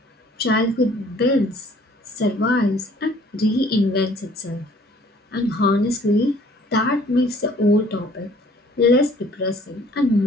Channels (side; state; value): both; normal; correlation 0.56